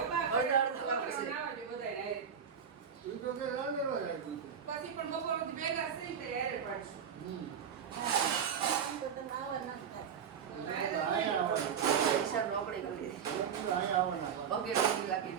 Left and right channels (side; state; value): left; quieter; 7.5 dB